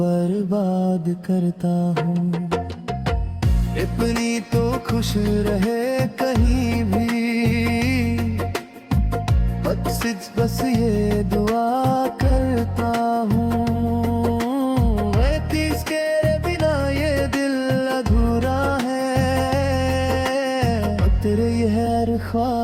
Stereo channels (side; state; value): both; identical; correlation 1.00